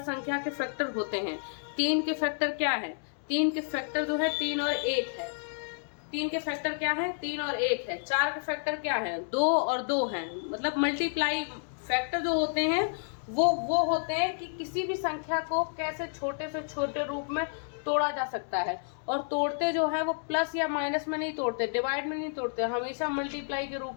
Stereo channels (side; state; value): right; silent; digital silence